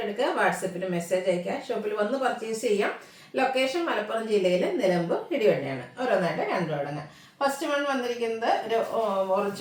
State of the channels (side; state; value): both; identical; correlation 1.00